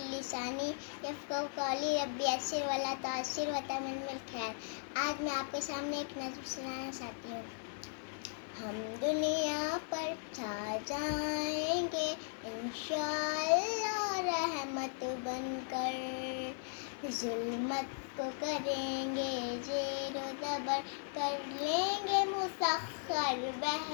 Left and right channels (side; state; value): right; silent; digital silence